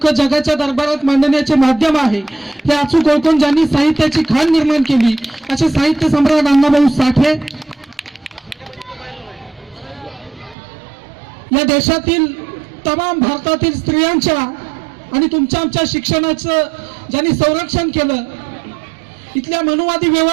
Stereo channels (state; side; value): drops out; left; at 10.6 s